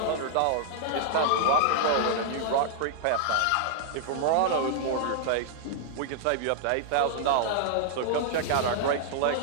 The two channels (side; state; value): both; different; correlation -0.01